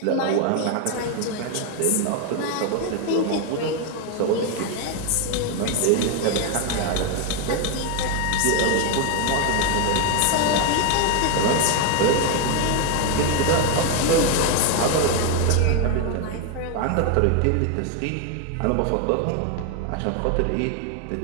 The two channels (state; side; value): different; both; correlation 0.01